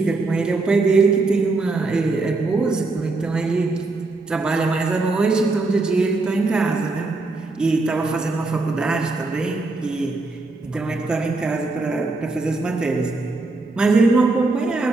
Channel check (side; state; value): left; quieter; 3.4 dB